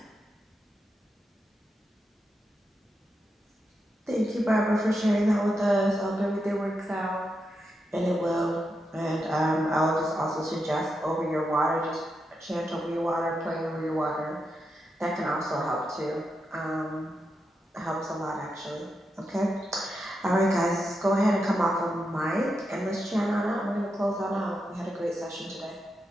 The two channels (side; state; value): both; normal; correlation 0.85